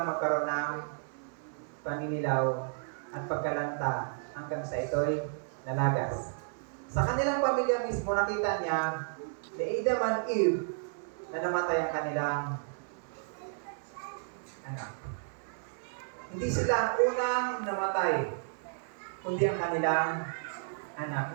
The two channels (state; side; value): silent; left; 56 dB below the other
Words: magkaroon ng paninilaw at pagkalanta hanggang sa ito'y nalagas. Sa kanilang pamilya mismo, nakita niya na Adam and Eve na namatay ang kanilang anak. Hindi sila ang unang namatay, kundi ang kanilang